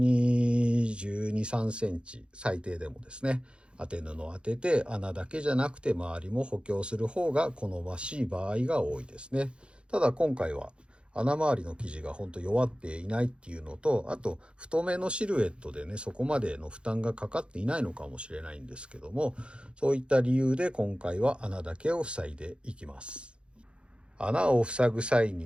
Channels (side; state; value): left; late; 0.057 ms